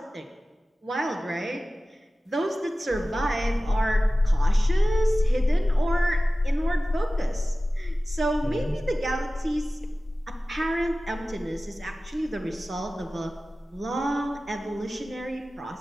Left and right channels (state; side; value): normal; both; correlation 0.96